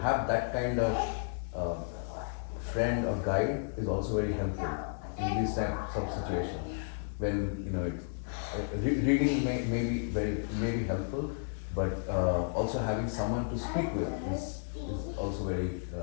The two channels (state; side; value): silent; right; digital silence